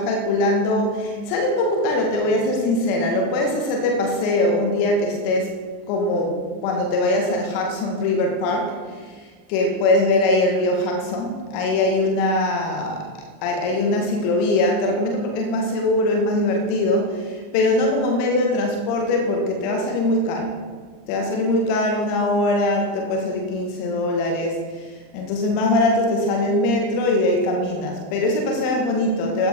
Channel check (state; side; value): late; right; 39 ms